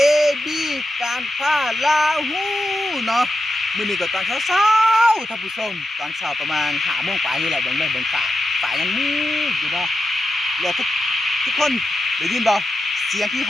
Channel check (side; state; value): both; normal; correlation 0.89